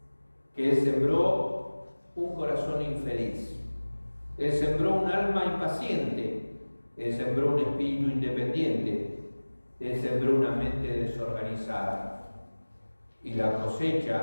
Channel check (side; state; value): both; inverted; correlation -1.00